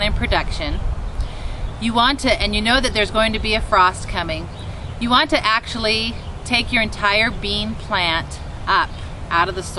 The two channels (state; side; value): identical; both; correlation 1.00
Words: in production, you want to, and you know that there's going to be a frost coming, you want to actually take your entire bean plant up out of the